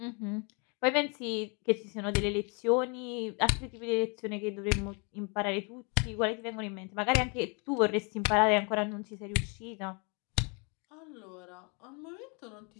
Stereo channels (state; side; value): quieter; right; 34.0 dB